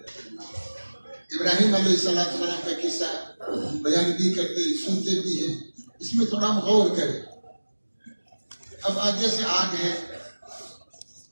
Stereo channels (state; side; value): inverted; both; correlation -1.00